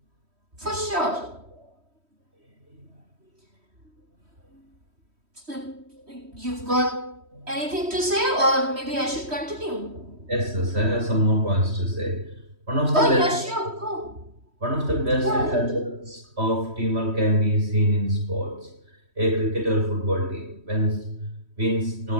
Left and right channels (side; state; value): left; late; 3.1 ms